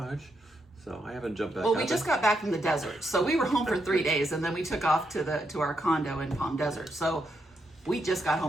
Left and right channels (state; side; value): normal; both; correlation 0.81